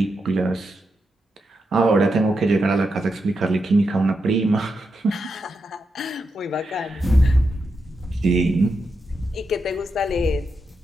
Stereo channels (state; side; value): normal; both; correlation 0.86